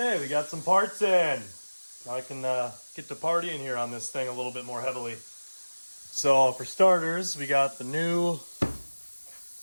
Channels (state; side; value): inverted; both; correlation -1.00